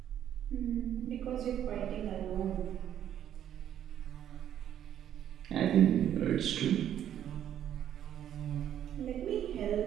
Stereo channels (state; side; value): quieter; left; 10.4 dB